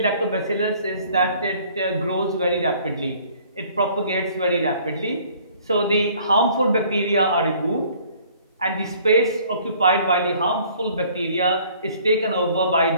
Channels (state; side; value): inverted; both; correlation -0.56